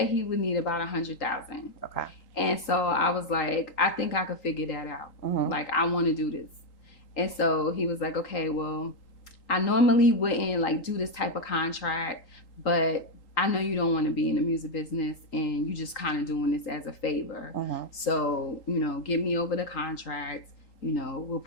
he would need about $100,000. Okay. And so I was like, I think I could figure that out. Like, I want to do this. And so he was like, okay, well, I normally wouldn't like do this type of contract, but I know you don't want to be in the music business and you just kind of doing this as a favor. So, you know, get me over the contract, you know, we'll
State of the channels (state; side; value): late; right; 3.8 ms